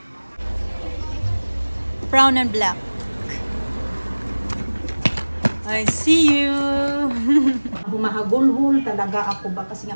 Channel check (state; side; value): inverted; both; correlation -1.00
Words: Brown and black. I see you. Humahagulhol talaga ako ba kasi